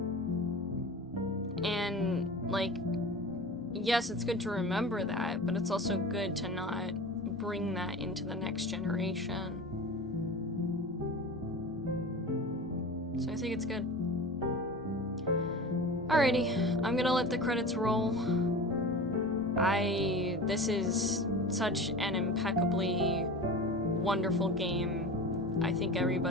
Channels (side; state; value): both; normal; correlation 0.33